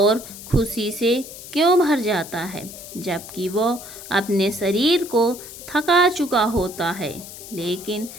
खुशी से क्यों भर जाता है? जबकि वो अपने शरीर को थका चुका होता है। लेकिन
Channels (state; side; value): noise; left; hiss, 14 dB below the sound